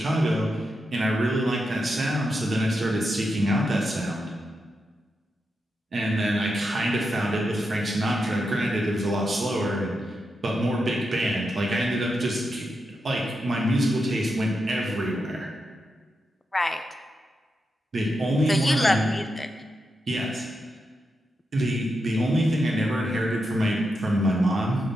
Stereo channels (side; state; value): both; normal; correlation 0.86